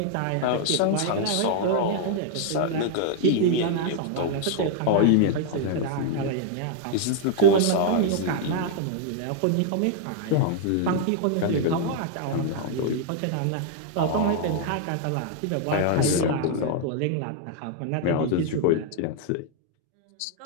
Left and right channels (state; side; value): different; both; correlation 0.00